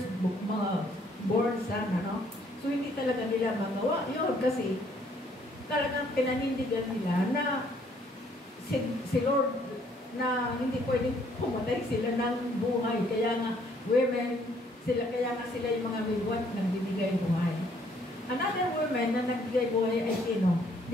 born son, ano? So, hindi talaga nila magawa. Yun, kasi talagang pinanindigan nila na si Lord na hindi pwedeng pumatay sila ng buhay. Kaya nga, kaya nga sila yung mga midwife na nagbibigay buhay. Another woman na nagbigay buhay ay sino?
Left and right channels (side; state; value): both; normal; correlation 0.65